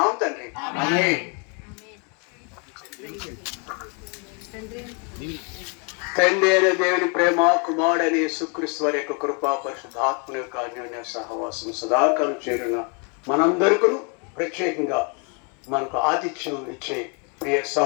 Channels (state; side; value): quieter; right; 36.4 dB